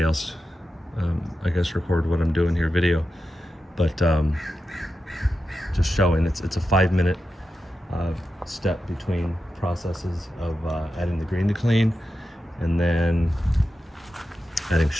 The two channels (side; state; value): both; normal; correlation 0.90